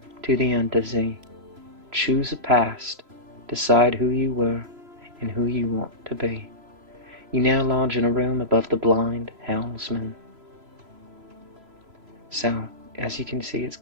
to the Untersee. Choose a past, decide who you were and who you want to be. You now lodge in a room above the blind helmsman. So, as you can see, it's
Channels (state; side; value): late; left; 3.0 ms